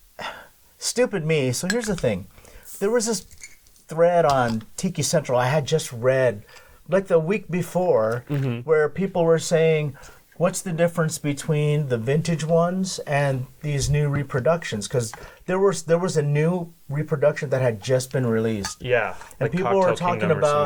stupid me. So here's the thing: there was this thread on Tiki Central I had just read, like the week before, where people were saying, "What's the difference between the vintage ones and these new reproductions?" Because there was a new reproduction that had just been released. Yeah, and like people were talking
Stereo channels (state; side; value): identical; both; correlation 1.00